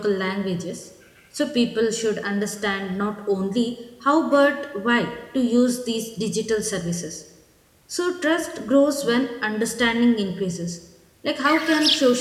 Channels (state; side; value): identical; both; correlation 1.00